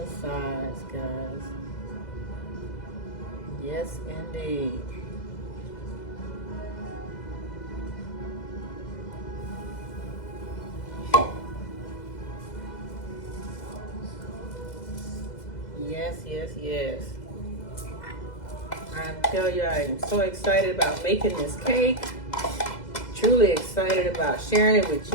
sides, guys. Yes, indeed. Yes, yes, yes. I tell you, I am so excited about making this cake. Truly excited about sharing it with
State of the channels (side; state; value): right; late; 2.0 ms